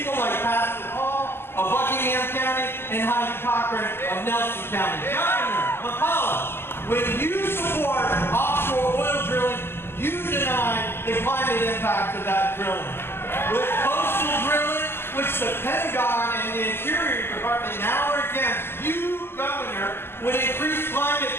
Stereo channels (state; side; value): late; right; 0.11 ms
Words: like Pastor Paul of Buckingham County and Heidi Cochran of Nelson County. Governor McAuliffe, when you support offshore oil drilling, you deny the climate impact of that drilling. With coastal drilling, which the Pentagon and the Interior Department now are against, you, Governor, would increase climate